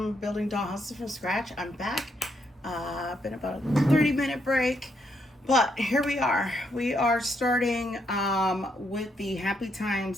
Building Dollhouses from Scratch. I'm back. Been about a 30-minute break, but here we are. We are starting with the Happy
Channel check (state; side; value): normal; both; correlation 0.76